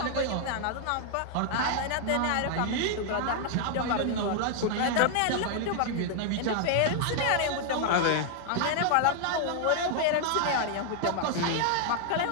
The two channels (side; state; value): both; different; correlation 0.00